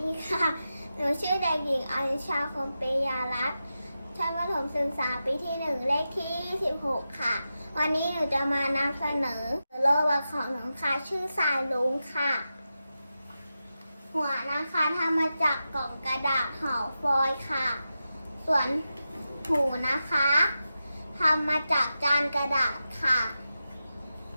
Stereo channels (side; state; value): both; inverted; correlation -0.91